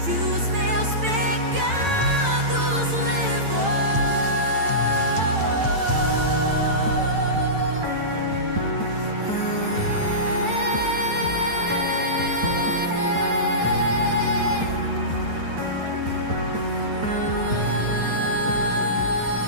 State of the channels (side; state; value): left; late; 9.0 ms